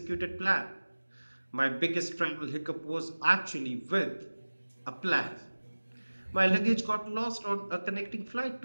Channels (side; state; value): both; inverted; correlation -1.00